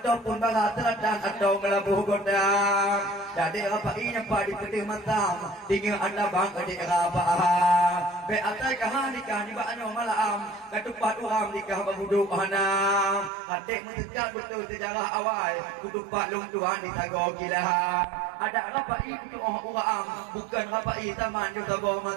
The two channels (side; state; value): left; drops out; at 13.3 s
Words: barat teladan atau melabuh gondang jadi apa ini apa di pedih matam tinggal anda bang adik apa be atai kahanikah ni baknya malam ketupat uram nikah berhuduk hanam adik mendekat betul sejarah awal kutupat long tuan di tago gila ada rapai kutu uram bukan rapai taman juga bawah